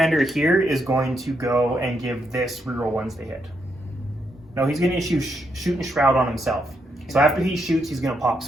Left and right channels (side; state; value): both; normal; correlation 0.79